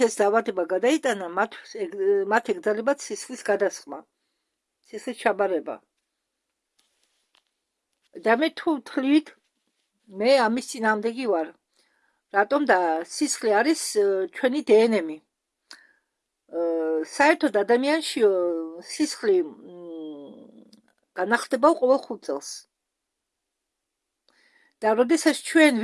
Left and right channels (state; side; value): identical; both; correlation 1.00